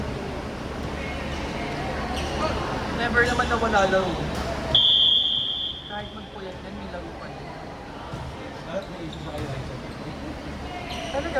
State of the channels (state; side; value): identical; both; correlation 1.00